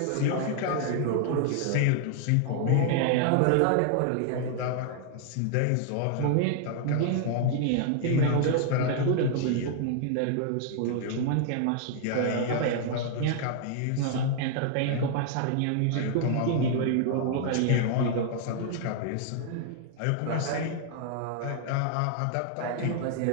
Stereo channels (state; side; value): different; both; correlation 0.00